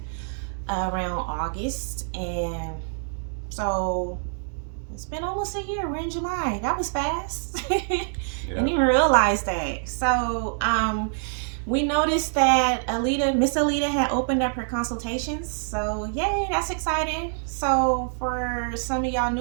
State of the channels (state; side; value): silent; left; digital silence